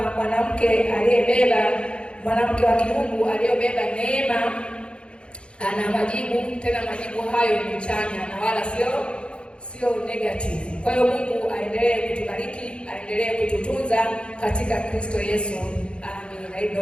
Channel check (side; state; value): right; late; 0.056 ms